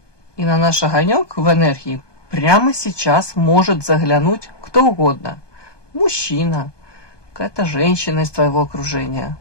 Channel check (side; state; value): right; late; 1.2 ms